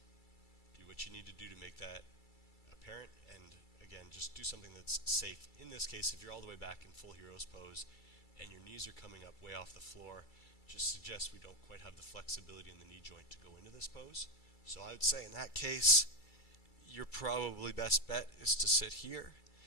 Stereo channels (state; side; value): late; right; 2.3 ms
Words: Do what you need to do to make that apparent, and again, just do something that's safe. In this case, if you're all the way back in full hero's pose and your knees are coming up way off the floor, just suggest we don't quite have the flexibility in the knee joint to go into this pose. So I would say in that case, your probably best bet is to sit here